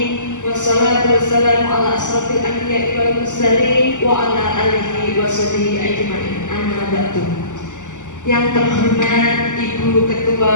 Wassalatu wassalamu ala asrofil anbiya'i wal mursalin wa ala alihi washabihi ajmain. Amma ba'du. Yang terhormat Ibu Ketua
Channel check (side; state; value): right; late; 0.86 ms